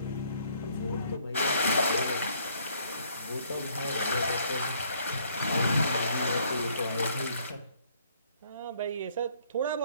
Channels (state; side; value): inverted; both; correlation -0.64